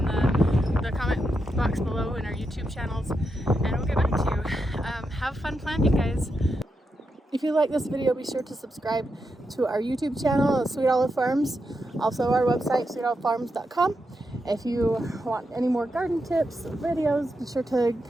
the comment box below in our YouTube channels, and we'll get back to you. Have fun planting, guys. If you like this video, be sure to subscribe to our YouTube channel, Sweet Olive Farms, also our website, sweetolivefarms.com. If you want any more garden tips or videos, be sure to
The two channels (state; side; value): normal; both; correlation 0.85